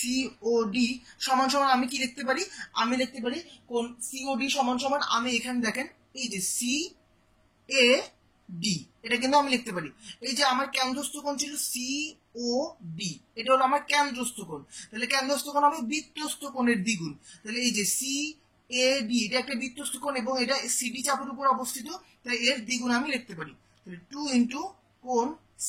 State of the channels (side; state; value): both; identical; correlation 1.00